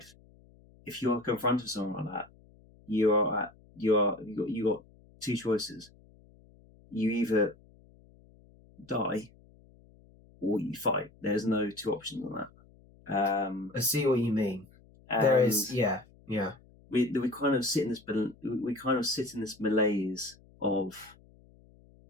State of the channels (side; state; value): left; noise; hum, 27 dB below the sound